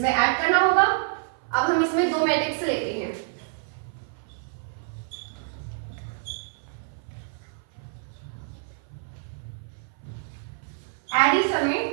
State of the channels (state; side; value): silent; left; 56 dB below the other